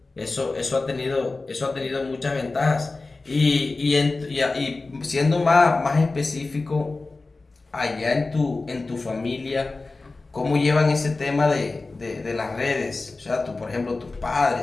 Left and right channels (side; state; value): right; quieter; 3.5 dB